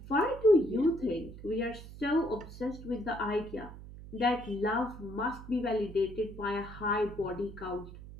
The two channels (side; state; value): right; noise; hum, 14 dB below the sound